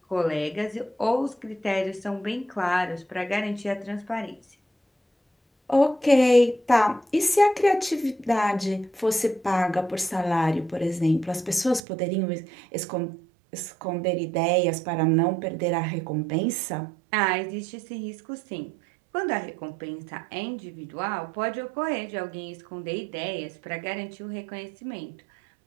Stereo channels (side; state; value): left; drops out; at 11.8 s